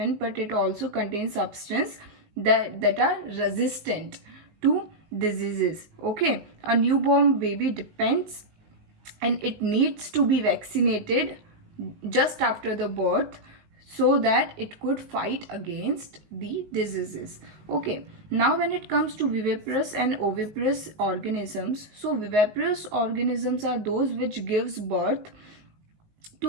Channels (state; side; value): late; left; 19 ms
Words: but it also contains substance that are resistant to diseases. Okay, a newborn baby depends and it needs to be vaccinated just after the birth so that it could fight against the diseases. Okay, now when it comes to viviparous and oviparous organisms, so viviparous organisms are those which gives birth